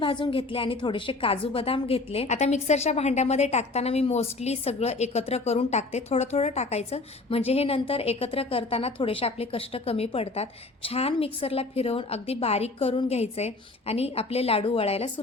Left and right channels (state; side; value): quieter; right; 3.4 dB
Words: घेतले आणि थोडेसे काजू बदाम घेतले. आता मिक्सरच्या भांड्यामध्ये टाकताना मी मोस्टली सगळं एकत्र करून टाकते. थोडं थोडं टाकायचं, म्हणजे हे नंतर एकत्र करताना थोडेसे आपले कष्ट कमी पडतात. छान मिक्सरला फिरवून अगदी बारीक करून घ्यायचंय आणि आपले लाडू वळायला